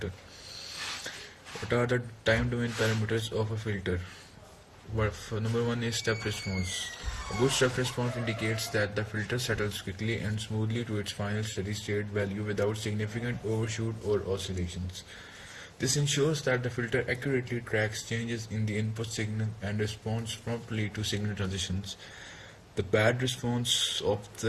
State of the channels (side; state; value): both; identical; correlation 1.00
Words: What are the time domain parameters of a filter? Number one is step response. A good step response indicates that the filter settles quickly and smoothly to its final steady state value without significant overshoot or oscillations. This ensures that the filter accurately tracks changes in the input signal and responds promptly to signal transitions. The bad response of